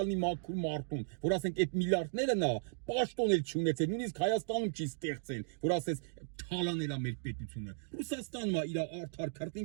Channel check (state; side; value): silent; left; digital silence